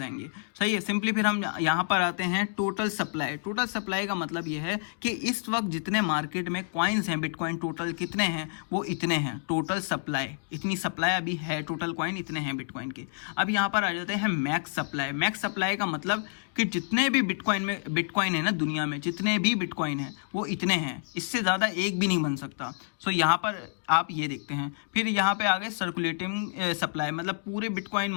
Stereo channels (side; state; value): right; silent; digital silence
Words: आएंगे। सही है। सिंपली फिर हम यहाँ पर आते हैं टोटल सप्लाई। टोटल सप्लाई का मतलब ये है कि इस वक्त जितने मार्केट में कॉइन्स हैं, बिटकॉइन टोटल कितने हैं, वो इतने हैं। टोटल सप्लाई, इतनी सप्लाई अभी है, टोटल कॉइन इतने हैं बिटकॉइन के। अब यहाँ पर आ जाते हैं मैक्स सप्लाई। मैक्स सप्लाई का मतलब कि जितने भी बिटकॉइन है ना दुनिया में, जितने भी बिटकॉइन है वो इतने हैं, इससे ज़्यादा एक भी नहीं बन सकता। सो यहाँ पर आप ये देखते हैं। फिर यहाँ पे आ गए सर्कुलेटिंग सप्लाई, मतलब पूरे बिटकॉइन